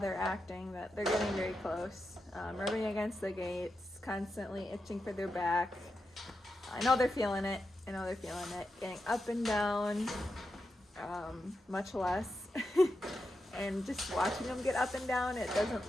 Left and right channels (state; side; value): normal; both; correlation 0.88